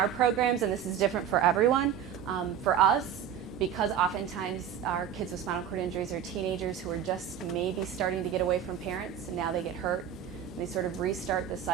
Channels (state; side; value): quieter; left; 9.1 dB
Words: programs, and this is different for everyone, for us, because oftentimes our kids with spinal cord injuries are teenagers who are just maybe starting to get away from parents, and now they get hurt. They sort of restart the